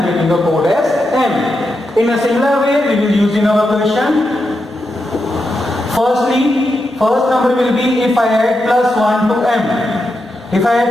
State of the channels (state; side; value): normal; both; correlation 0.86